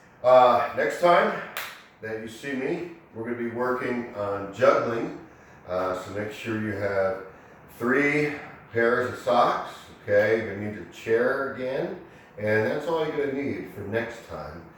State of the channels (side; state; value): both; identical; correlation 1.00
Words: next time that you see me, we're going to be working on juggling. So make sure you have 3 pairs of socks. Okay, you're going to need your chair again. And that's all you're going to need for next time.